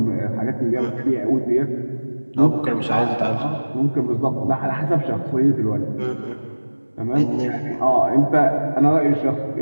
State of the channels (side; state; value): both; inverted; correlation -1.00